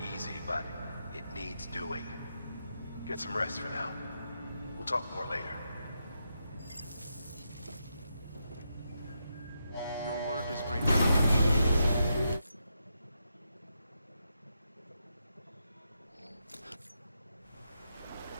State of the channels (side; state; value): both; inverted; correlation -0.84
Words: easy, but it needs doing. Get some rest for now. We'll talk more later. Your work is greatly appreciated.